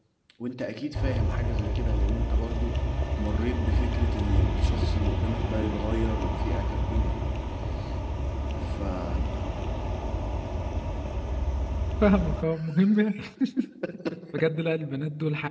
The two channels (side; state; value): both; identical; correlation 1.00